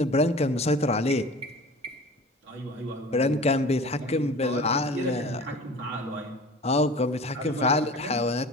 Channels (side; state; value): both; normal; correlation 0.40